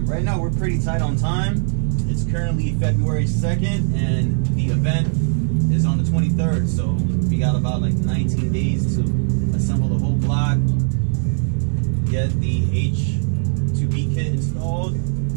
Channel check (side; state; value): left; silent; 59 dB below the other